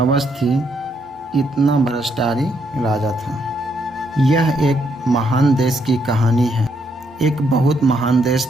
थी, इतना भ्रष्टाचारी राजा था। यह एक महान देश की कहानी है। एक बहुत महान देश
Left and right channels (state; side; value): normal; both; correlation 0.74